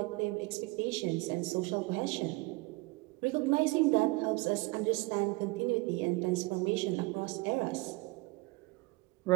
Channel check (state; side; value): quieter; left; 23.8 dB